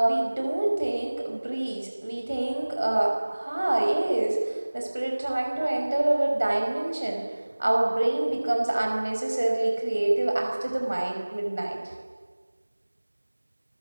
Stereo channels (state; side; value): inverted; both; correlation -1.00